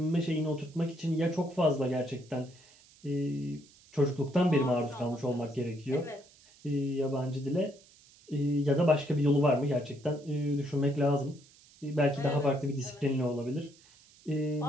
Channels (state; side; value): noise; right; hiss, 26 dB below the sound